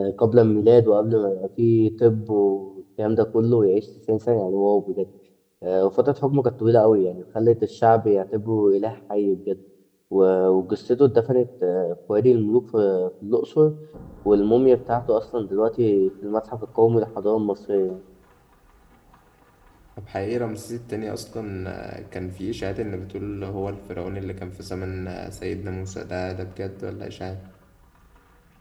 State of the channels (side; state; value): both; identical; correlation 1.00